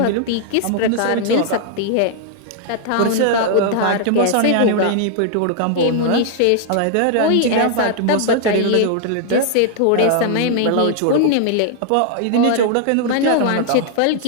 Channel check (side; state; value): both; different; correlation -0.01